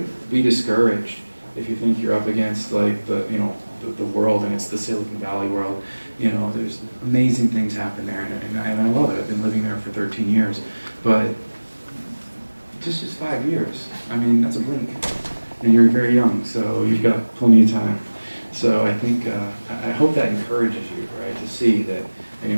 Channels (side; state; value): both; inverted; correlation -1.00